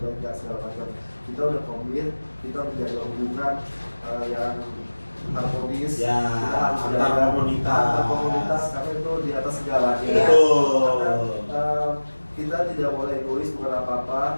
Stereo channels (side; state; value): both; inverted; correlation -1.00